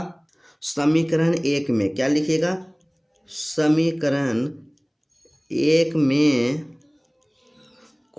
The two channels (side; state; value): both; identical; correlation 1.00